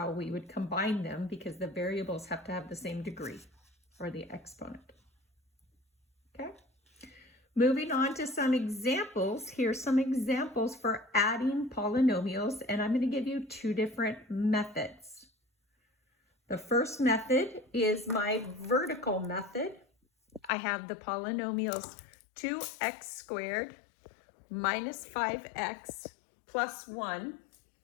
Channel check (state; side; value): drops out; right; at 20.5 s